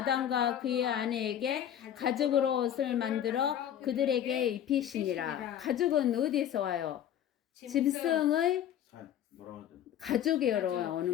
그의 아내에게 가죽으로 옷을 만들어 그들에게 입히시니라. 가죽은 어디에서 와요? 짐승의 가죽에로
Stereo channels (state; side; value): quieter; right; 10.3 dB